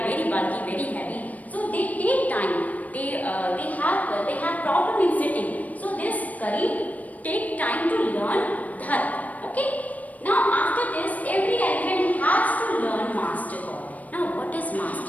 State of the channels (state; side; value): late; right; 0.073 ms